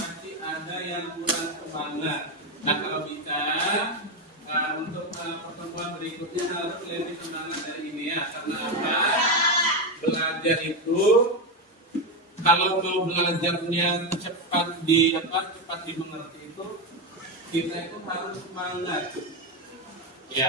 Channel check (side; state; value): both; normal; correlation 0.11